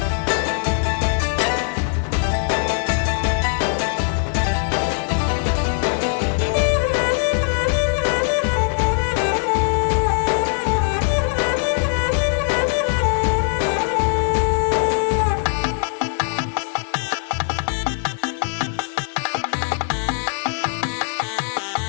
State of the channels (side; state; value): right; silent; digital silence